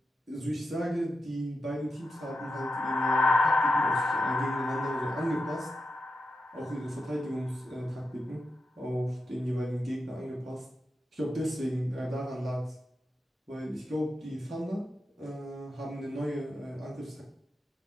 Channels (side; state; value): both; normal; correlation 0.88